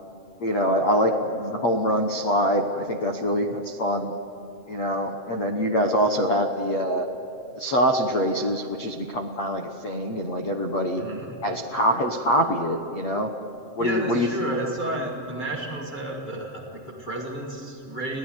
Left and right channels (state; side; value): late; right; 7.6 ms